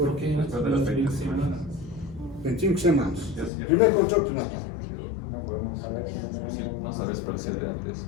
qué? 25 semanas. Primer control prenatal. No podemos saber si no tenemos... No sabes por si es de antes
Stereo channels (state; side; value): drops out; right; at 3.5 s